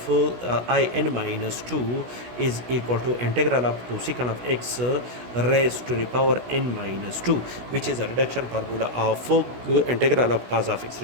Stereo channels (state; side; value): late; left; 17 ms